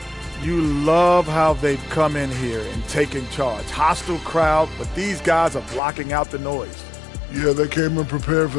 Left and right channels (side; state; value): right; drops out; at 5.8 s